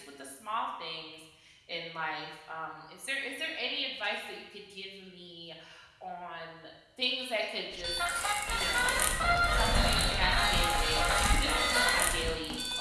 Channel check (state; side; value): identical; both; correlation 1.00